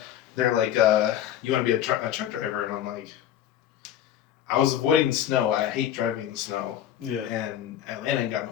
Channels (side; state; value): right; quieter; 10.9 dB